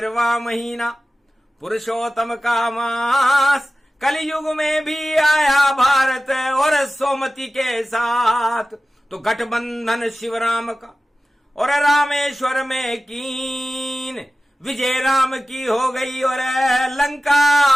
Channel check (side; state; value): both; normal; correlation 0.95